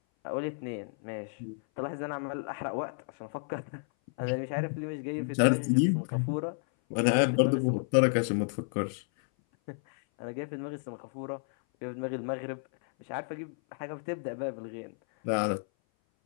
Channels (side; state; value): right; silent; 56 dB below the other